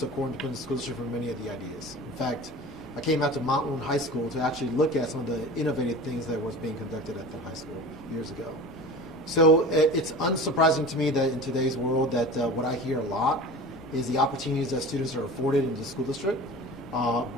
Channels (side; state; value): right; noise; rumble, 27 dB below the sound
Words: Independent School District for many of the ideas. In fact, I came out to Mount Wood High School to actually look at some of the innovative things that was being conducted at the high school years ago. So it's unsurprising to me that in today's world that what I hear a lot is the opportunities that students are afforded in the school district,